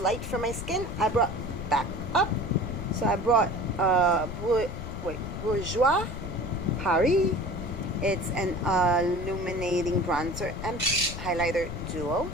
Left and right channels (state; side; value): noise; left; rumble, 7 dB below the sound